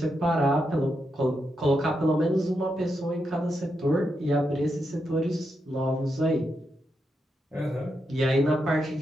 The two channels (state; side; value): normal; both; correlation 0.84